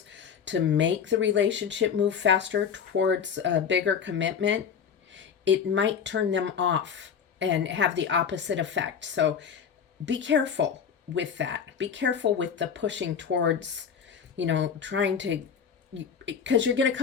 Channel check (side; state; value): right; quieter; 7.2 dB